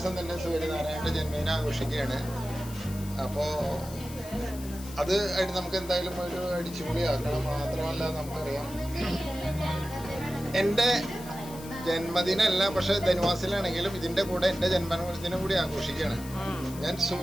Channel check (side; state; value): left; noise; hiss, 16 dB below the sound